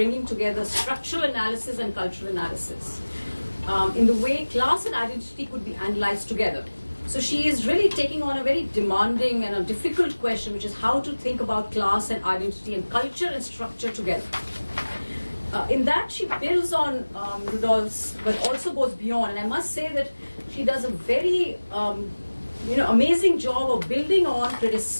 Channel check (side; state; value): both; inverted; correlation -1.00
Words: together structural analysis and cultural analysis in the way class and identity could be analyzed together. So she is really taking on a very demanding and a difficult question, which is how to think about class and identity and culture and structure together. In that, she builds on Rudolph's, but also goes beyond. And I must say that she does a very amazing job of building on,